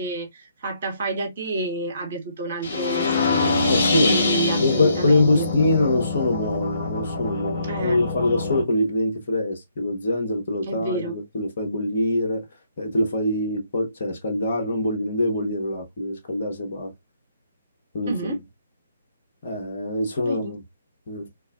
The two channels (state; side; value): inverted; both; correlation -0.72